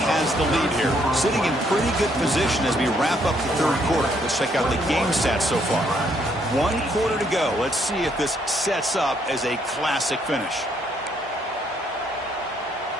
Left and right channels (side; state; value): both; normal; correlation 0.70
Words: has the lead here, sitting in pretty good position as we wrap up the third quarter. Let's check out the game stats so far. 1 quarter to go. Let's see if this sets up as a classic finish.